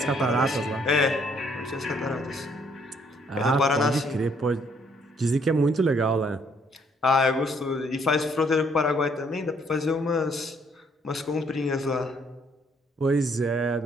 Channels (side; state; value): both; normal; correlation 0.67